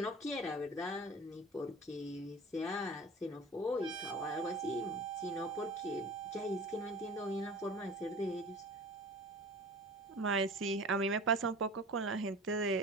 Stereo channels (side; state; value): both; normal; correlation 0.39